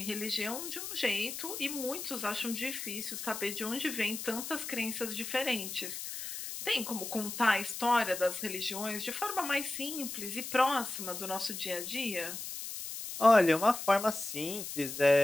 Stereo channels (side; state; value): left; noise; hiss, 7 dB below the sound